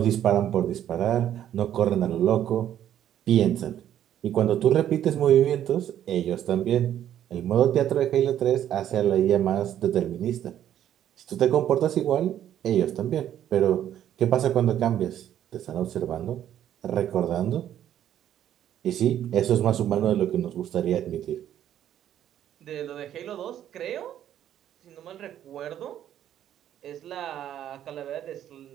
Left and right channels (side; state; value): left; quieter; 10.9 dB